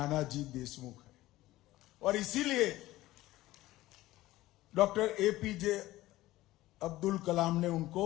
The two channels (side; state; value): right; quieter; 16.8 dB